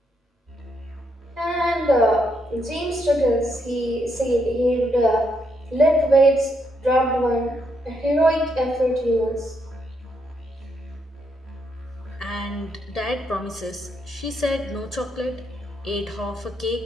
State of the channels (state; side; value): normal; both; correlation 0.77